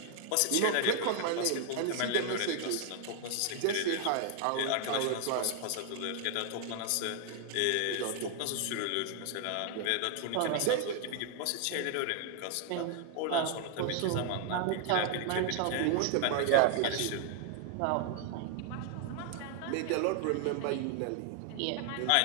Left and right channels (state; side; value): different; both; correlation 0.00